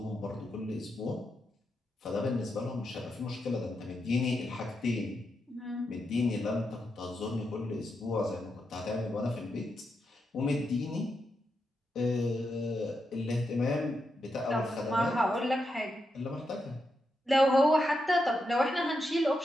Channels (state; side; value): normal; both; correlation 0.85